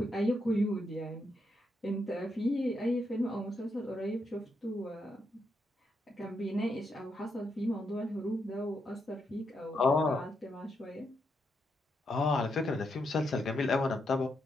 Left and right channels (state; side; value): normal; both; correlation 0.81